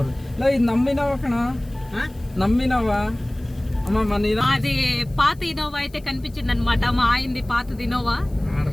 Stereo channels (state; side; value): noise; left; hiss, 28 dB below the sound